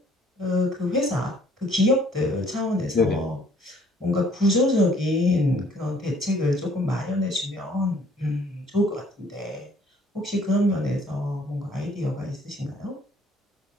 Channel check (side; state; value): both; normal; correlation 0.59